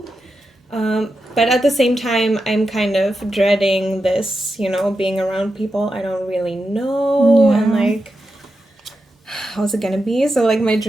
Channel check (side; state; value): both; normal; correlation 0.88